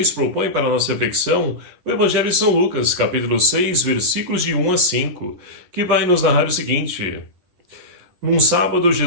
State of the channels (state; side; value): late; left; 11 ms